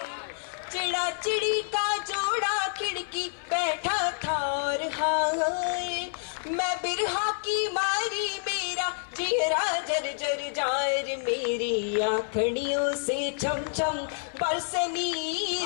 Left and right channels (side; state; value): right; silent; 58 dB below the other